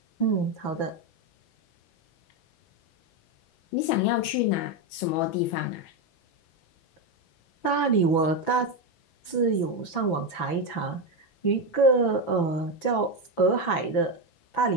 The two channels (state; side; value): late; right; 6.0 ms